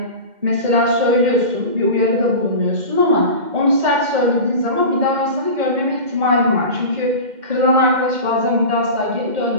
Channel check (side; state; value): left; late; 2.1 ms